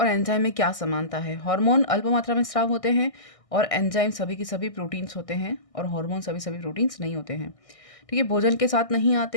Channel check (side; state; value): right; late; 1.6 ms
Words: एंजाइम में क्या समानता है। हार्मोन अल्प मात्रा में स्राव होते हैं और एंजाइम सभी की सभी प्रोटीन्स होते हैं, और हार्मोन सभी सभी प्रोटीन्स नहीं होते हैं। ठीक है। भोजन के साथ नहीं